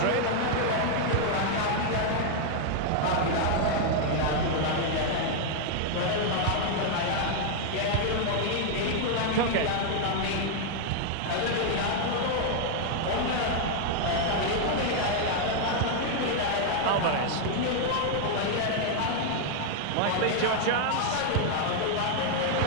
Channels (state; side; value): different; both; correlation 0.00